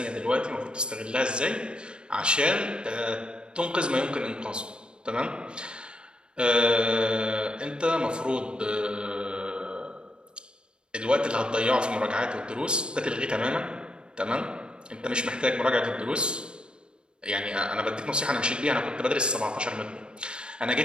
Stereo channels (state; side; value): late; left; 0.054 ms